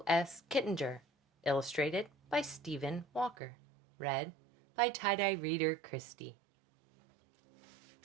S. Kittinger. Illustrated by Stephen Walker. Read by tie-dye reader Kristie.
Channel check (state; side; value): drops out; left; at 3.4 s